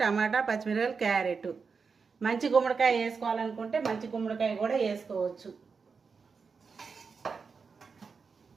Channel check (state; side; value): quieter; left; 5.2 dB